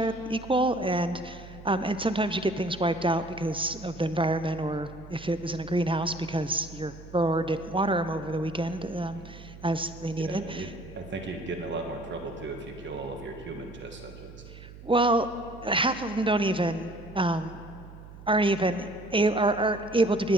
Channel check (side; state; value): right; noise; hum, 16 dB below the sound